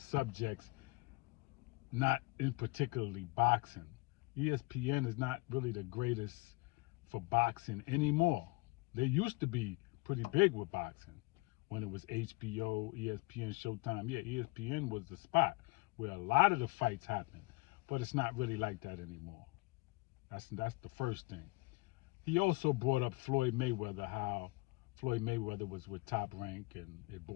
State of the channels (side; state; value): right; quieter; 23.6 dB